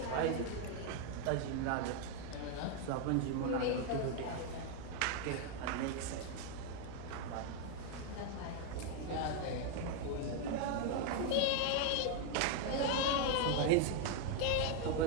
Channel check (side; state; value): both; different; correlation 0.01